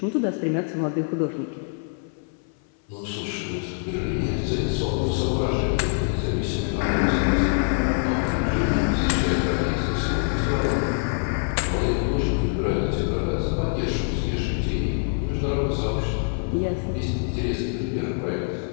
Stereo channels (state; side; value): silent; right; 60 dB below the other